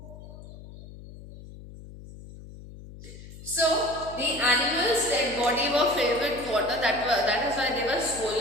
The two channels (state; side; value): noise; left; hum, 16 dB below the sound